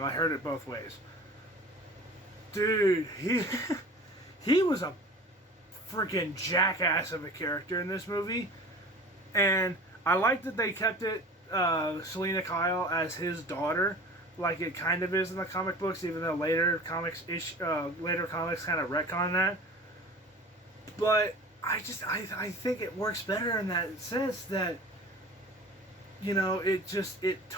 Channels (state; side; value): normal; both; correlation 0.40